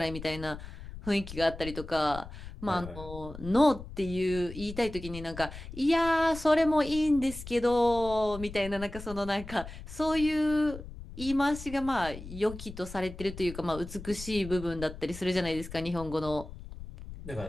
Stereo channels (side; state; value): left; noise; rumble, 12 dB below the sound